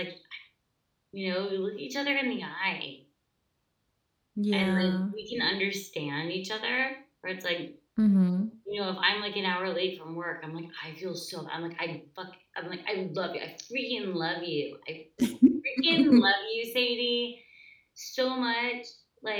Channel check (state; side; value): identical; both; correlation 1.00